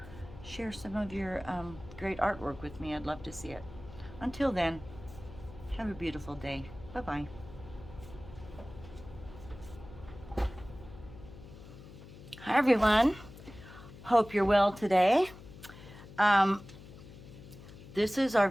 some of your great artwork with me. I'd love to see it. Until then, have a beautiful day. Bye-bye. Hi everyone. Hope you're well today. This is our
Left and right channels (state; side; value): noise; left; hum, 17 dB below the sound